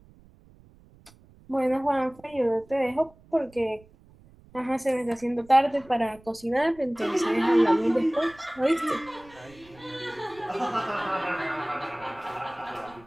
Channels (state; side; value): noise; right; rumble, 26 dB below the sound